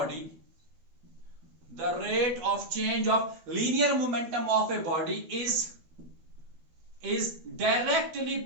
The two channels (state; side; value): late; left; 12 ms